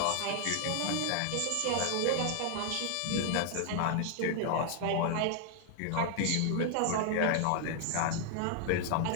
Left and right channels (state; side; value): different; both; correlation 0.00